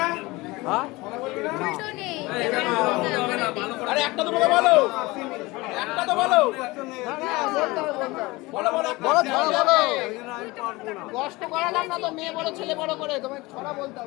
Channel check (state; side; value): quieter; right; 22.0 dB